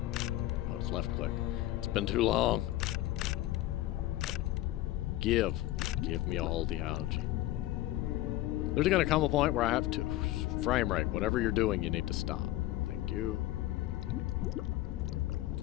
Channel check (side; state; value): right; quieter; 15.6 dB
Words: Oh, it's left click. It's been too long. Give me all the algae. There's gonna come a point where I have to... Frame rate, whatever you're doing, you need to stop. Thank you.